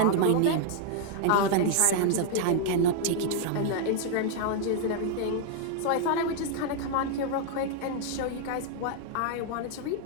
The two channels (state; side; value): different; both; correlation 0.00